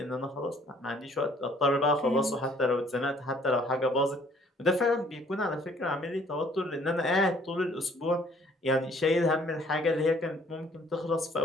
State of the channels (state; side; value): normal; both; correlation 0.59